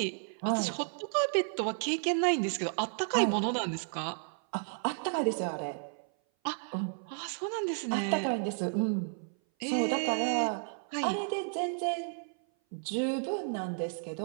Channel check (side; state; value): left; silent; 56 dB below the other